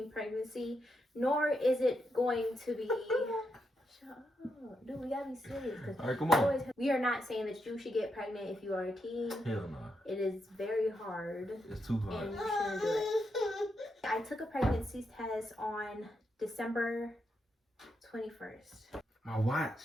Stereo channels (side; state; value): both; normal; correlation 0.82